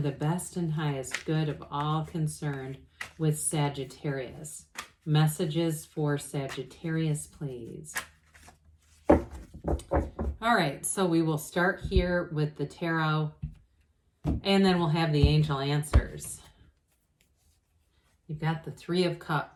best and highest good of all concerned with Sagittarius. Messages for Sagittarius, please. All right, so we will start here with the tarot, and then we'll have the angel answers. You've got the Three of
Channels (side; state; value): both; identical; correlation 1.00